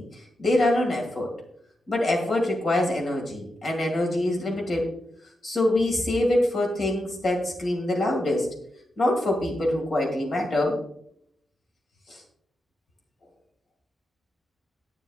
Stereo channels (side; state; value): both; normal; correlation 0.87